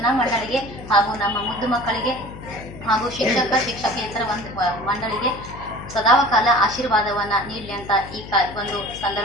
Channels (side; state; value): left; noise; hum, 14 dB below the sound